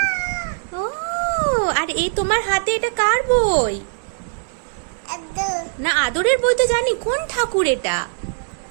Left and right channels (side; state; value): left; silent; digital silence